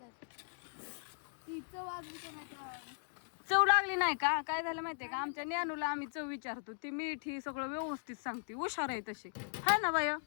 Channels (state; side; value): silent; right; digital silence